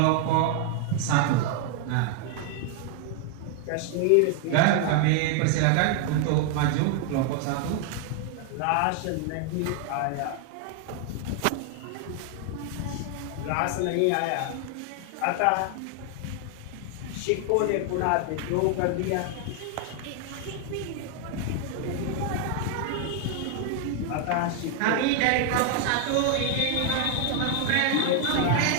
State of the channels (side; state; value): both; different; correlation 0.00